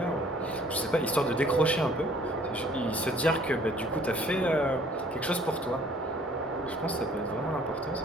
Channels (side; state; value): both; normal; correlation 0.57